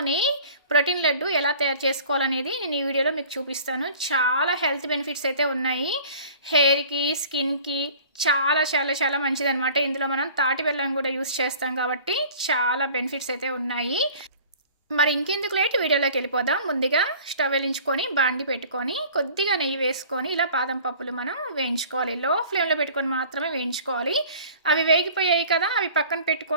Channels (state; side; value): inverted; both; correlation -0.46